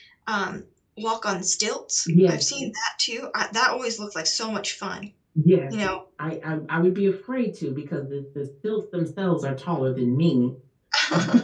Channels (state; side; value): identical; both; correlation 1.00